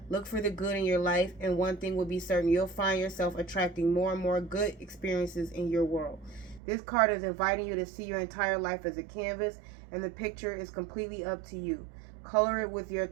Look for the good in your life, and one thing will be certain: you'll find yourself attracting more and more good experiences in your world. This card is inviting you to see your entire life as a canvas, and the picture is completely up to you. Color it with your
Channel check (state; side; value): drops out; left; at 6.6 s